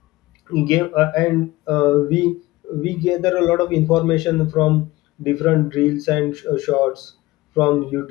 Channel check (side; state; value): right; quieter; 19.0 dB